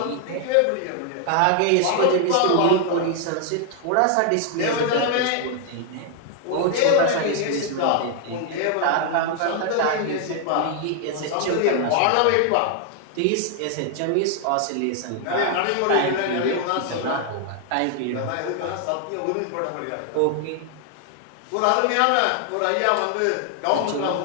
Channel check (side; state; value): both; different; correlation 0.00